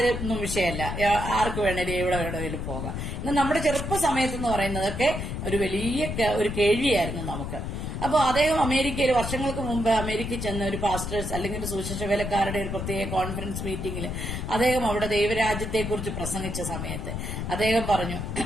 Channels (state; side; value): noise; left; rumble, 5 dB below the sound